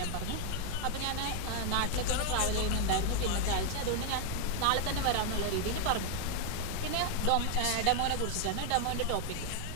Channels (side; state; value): both; different; correlation 0.00